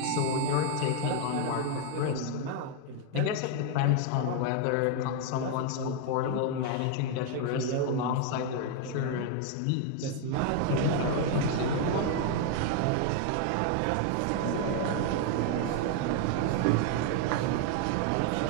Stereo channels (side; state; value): both; different; correlation 0.01